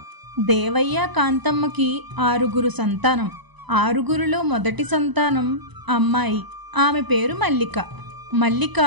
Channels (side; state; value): left; late; 1.0 ms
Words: దేవయ్య, కాంతమ్మకి 6 సంతానం. 6లో మొదటి సంతానం అమ్మాయి. ఆమె పేరు మల్లిక. మల్లిక